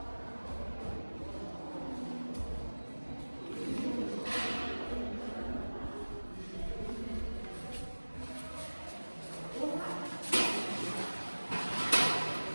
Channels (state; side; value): inverted; both; correlation -1.00